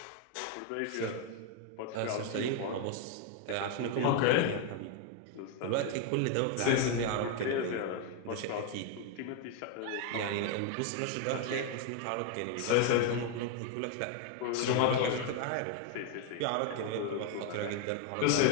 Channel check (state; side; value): different; both; correlation 0.01